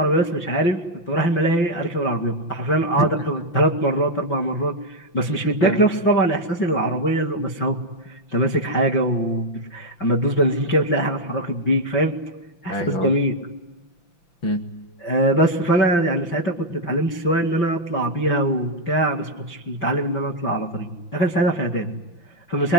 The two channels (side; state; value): right; late; 5.9 ms